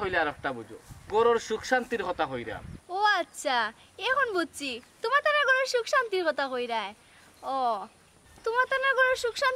আর একটা বুঝো গরুর সুখ শান্তির কথা হইরাম ও আচ্ছা এখন বুঝছি তোমার তার ঘরে সুখ শান্তির কথা কইরায় ও তোমার তার ঘরে সুখ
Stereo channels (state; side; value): identical; both; correlation 1.00